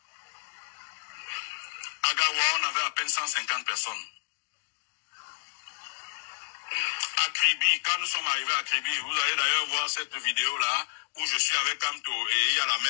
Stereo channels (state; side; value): silent; right; digital silence